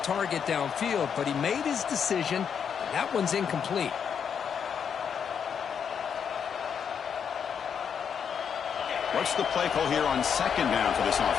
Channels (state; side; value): quieter; right; 7.4 dB